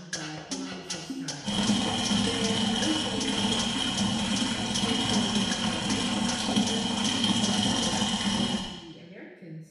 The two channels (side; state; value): both; identical; correlation 1.00